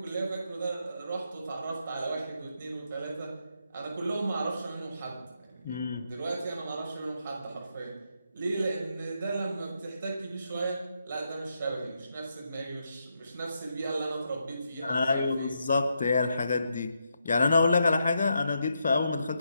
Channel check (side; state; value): both; inverted; correlation -0.81